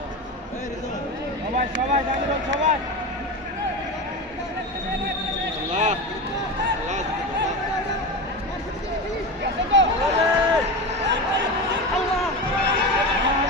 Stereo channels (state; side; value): normal; both; correlation 0.23